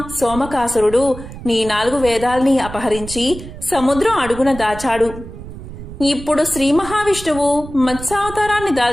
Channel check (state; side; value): noise; right; rumble, 12 dB below the sound